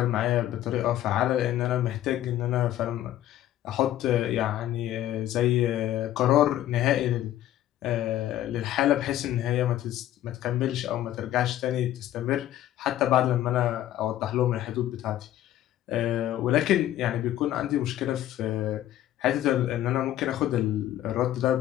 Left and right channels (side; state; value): right; quieter; 12.9 dB